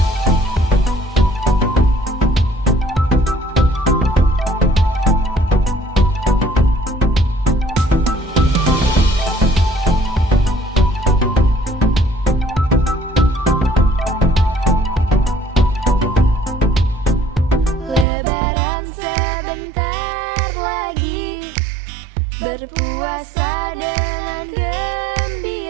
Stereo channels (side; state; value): left; drops out; at 18.1 s